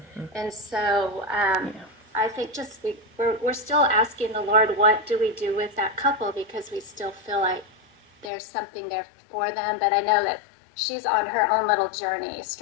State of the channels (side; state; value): right; drops out; at 8.3 s